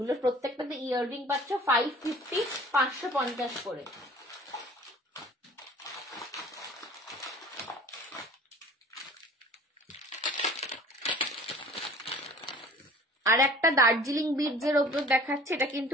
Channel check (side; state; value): both; normal; correlation 0.48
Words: প্রত্যেকটাতে ইয়াররিং পাচ্ছ 550, 550 করে। আর একটা দার্জিলিং বিডস এর ওপর দেখাচ্ছে, এটা কিন্তু